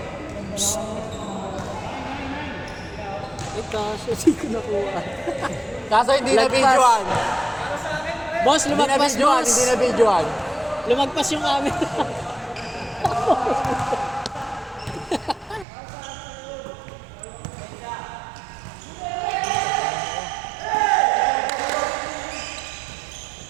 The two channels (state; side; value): drops out; left; at 15.7 s